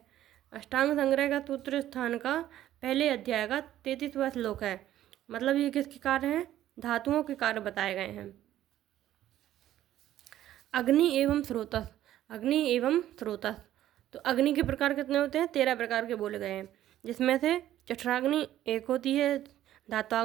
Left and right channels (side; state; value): left; quieter; 12.8 dB